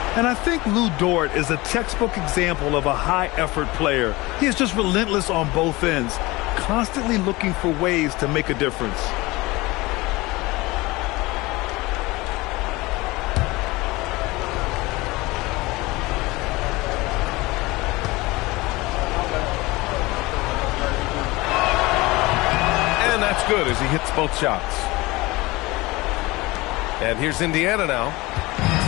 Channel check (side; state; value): right; quieter; 21.6 dB